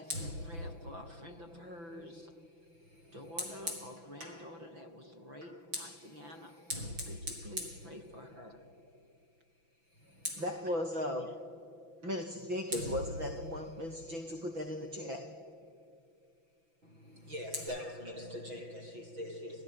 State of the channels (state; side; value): late; left; 6.0 ms